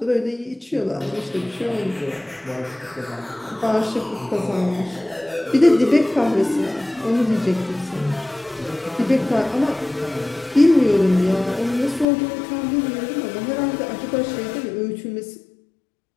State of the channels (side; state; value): right; drops out; at 12.1 s